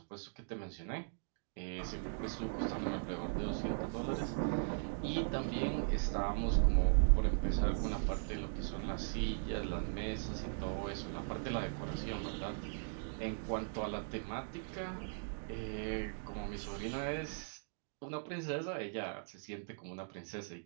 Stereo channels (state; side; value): silent; left; digital silence